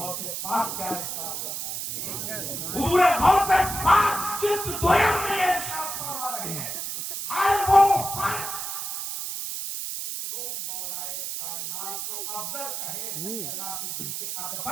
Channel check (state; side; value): noise; right; hiss, 4 dB below the sound